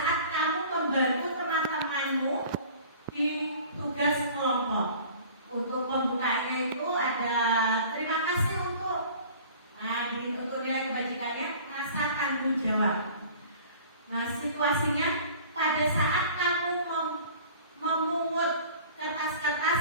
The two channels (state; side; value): inverted; both; correlation -0.46